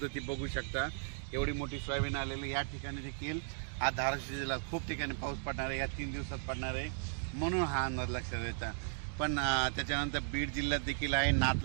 बघू शकता. एवढी मोठी सोयाबीन आलेली या ठिकाणी देखील आज धाराशिव जिल्ह्यात खूप ठिकाणी पाऊस पडणार आहे, या 3 दिवसात पडणार आहे, म्हणून हा अंदाज लक्षात येता. पण त्याच्यानंतर बीड जिल्ह्यात देखील आहे,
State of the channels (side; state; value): left; silent; digital silence